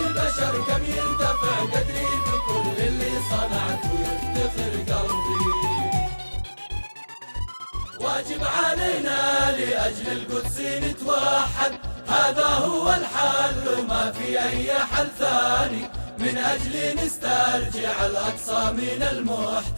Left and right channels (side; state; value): both; inverted; correlation -1.00